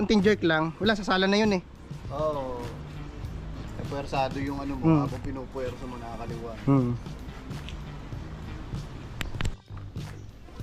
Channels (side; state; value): both; identical; correlation 1.00